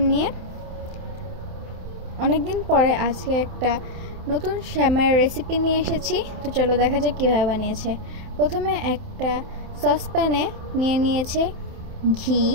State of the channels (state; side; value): late; left; 27 ms